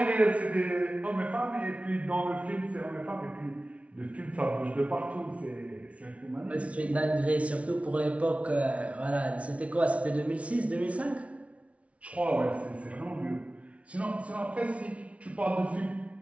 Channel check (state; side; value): late; left; 0.064 ms